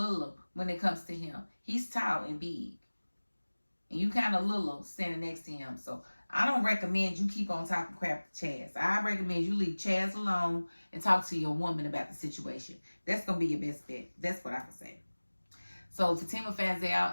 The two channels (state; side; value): inverted; both; correlation -1.00